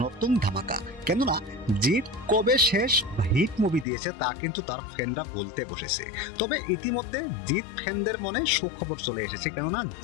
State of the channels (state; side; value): drops out; right; at 3.9 s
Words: নতুন ধামাকা। কেননা জিত কবে শেষ হিট মুভি দিয়েছে তা কিন্তু তার ফ্যানরা বলতে বসেছে। তবে ইতিমধ্যে জিত ফ্যানদের মনে সুখবর চলে এসেছে, কেননা